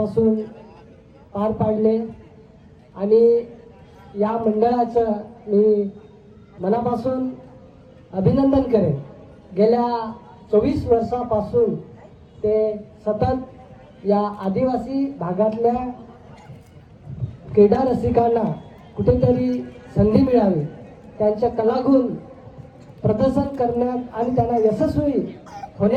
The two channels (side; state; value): both; identical; correlation 1.00